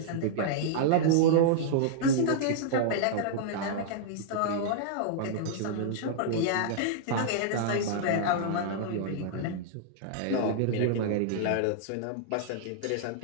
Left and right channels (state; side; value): different; both; correlation -0.02